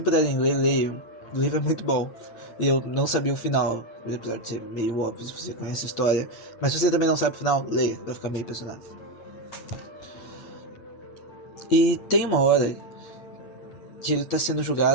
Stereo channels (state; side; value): late; right; 8.7 ms